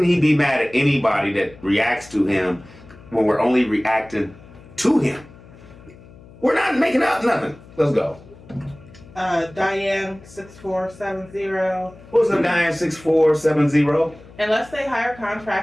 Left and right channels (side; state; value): left; noise; hum, 21 dB below the sound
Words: he be mad at anybody that reacts to him when we're only reacting to him? We're not making up nothing. Let's go. Diane 6470. What's up, Diane 6470? Unless they hire